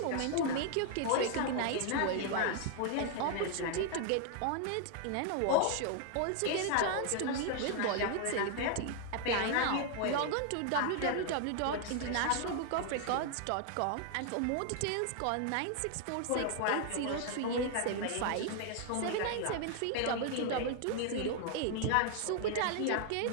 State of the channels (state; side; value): different; both; correlation 0.00